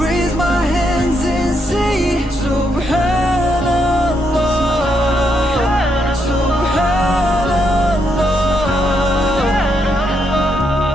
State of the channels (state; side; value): normal; both; correlation 0.78